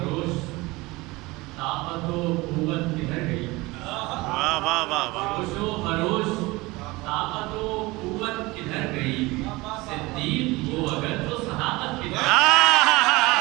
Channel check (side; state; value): left; quieter; 22.1 dB